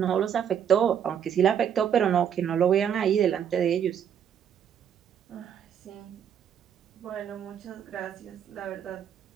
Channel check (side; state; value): left; quieter; 8.7 dB